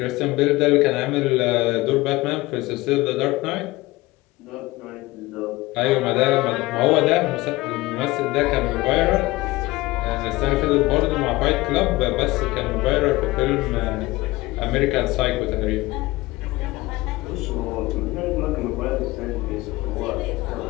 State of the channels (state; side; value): quieter; right; 20.1 dB